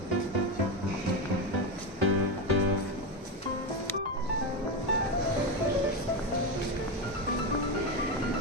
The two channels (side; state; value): both; normal; correlation 0.14